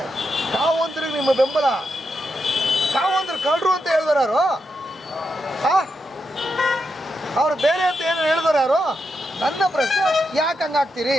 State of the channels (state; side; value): normal; both; correlation 0.85